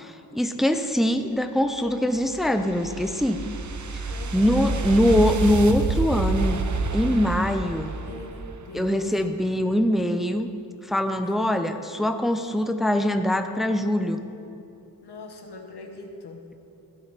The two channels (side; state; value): both; normal; correlation 0.84